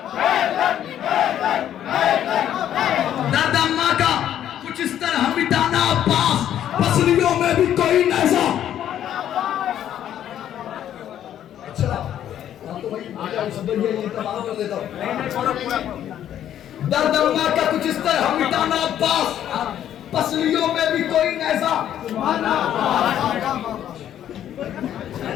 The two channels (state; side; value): quieter; right; 10.8 dB